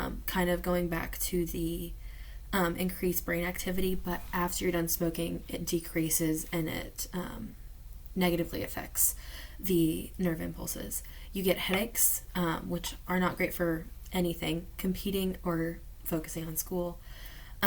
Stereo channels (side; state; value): both; identical; correlation 1.00